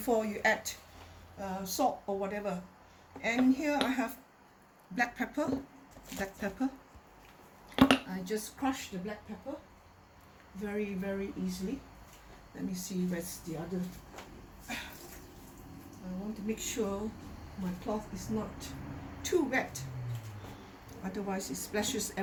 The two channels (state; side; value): identical; both; correlation 1.00